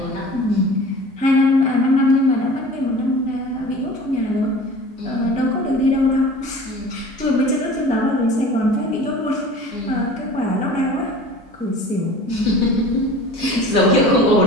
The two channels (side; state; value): both; normal; correlation 0.41